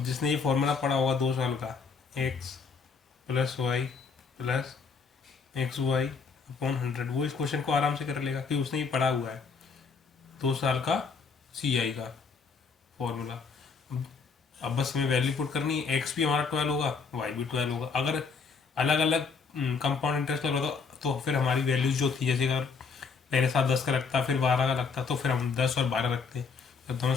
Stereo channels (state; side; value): quieter; right; 5.3 dB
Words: जिसने ये फॉर्मूला पढ़ा होगा 2 साल का, x plus y plus x y upon 100, वो इस क्वेश्चन को आराम से कर लेगा कि उसने ये पढ़ा हुआ है 2 साल का सी आई का फॉर्मूला। अब बस हमें वैल्यू पुट करनी है, एक्स भी हमारा 12 होगा, वाई भी 12 होगा। अगर अलग अलग कंपाउंड इंटरेस्ट लग रहा था तो फिर हमारी वैल्यूज जो थी, जैसे अगर पहले साल 10 का लगता, फिर 12 का लगता, तो फिर हम 10 और 12 रखते। जब दोनों